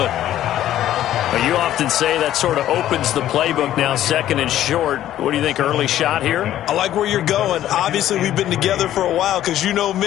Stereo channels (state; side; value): quieter; right; 12.5 dB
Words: you often say that sort of opens the playbook now, second and short. What do you think, early shot here? I like where you're going. Obviously, we've been together for a while because you know